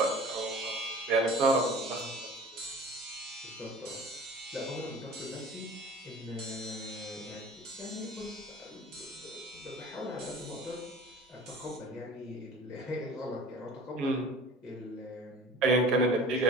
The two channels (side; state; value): both; normal; correlation 0.43